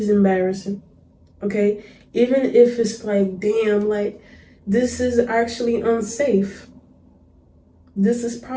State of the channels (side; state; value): both; identical; correlation 1.00